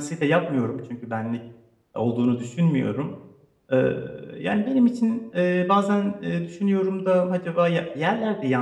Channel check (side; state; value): both; identical; correlation 1.00